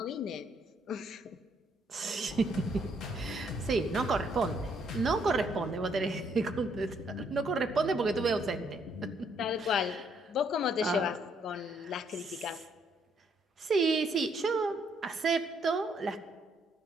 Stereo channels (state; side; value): normal; both; correlation 0.70